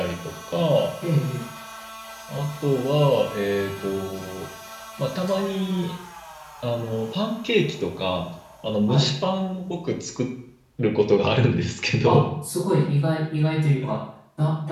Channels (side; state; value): both; identical; correlation 1.00